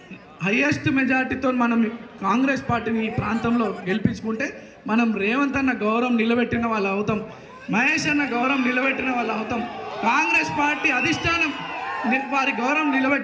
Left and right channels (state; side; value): identical; both; correlation 1.00